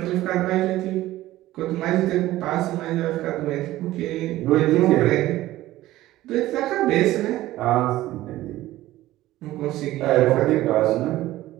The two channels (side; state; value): left; quieter; 15.9 dB